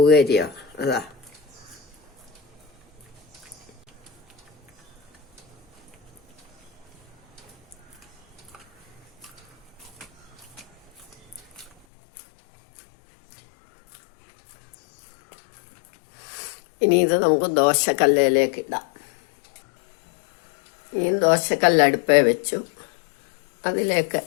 അതാ ഇനി ഇത് നമുക്ക് ദോശക്കല്ലിലേക്ക് ഇടാം. ഇനി ദോശക്കല്ല് അടുപ്പേ വെച്ചു. അതിലേക്ക്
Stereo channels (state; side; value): drops out; right; at 11.7 s